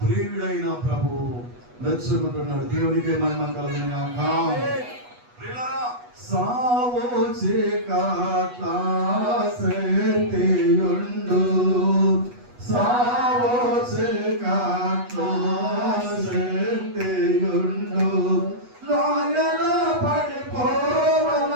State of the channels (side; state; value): left; late; 8.2 ms